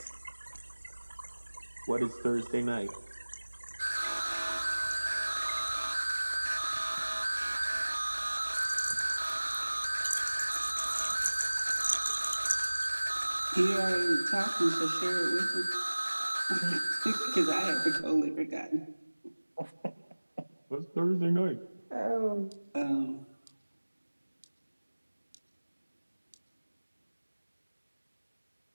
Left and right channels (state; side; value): inverted; both; correlation -1.00